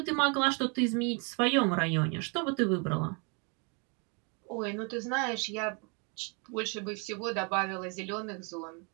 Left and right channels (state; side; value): quieter; left; 34.5 dB